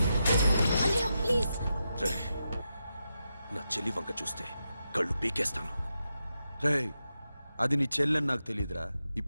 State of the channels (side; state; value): both; inverted; correlation -0.87